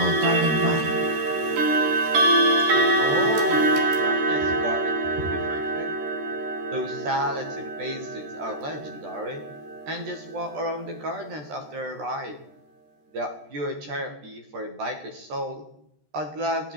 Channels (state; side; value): late; left; 13 ms